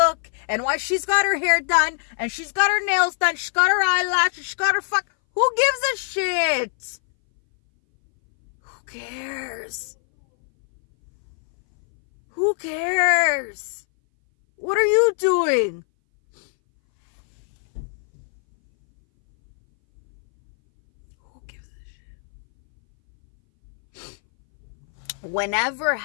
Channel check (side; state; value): right; silent; 60 dB below the other